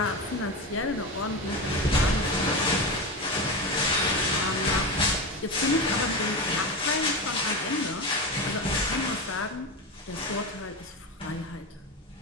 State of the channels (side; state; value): both; normal; correlation 0.20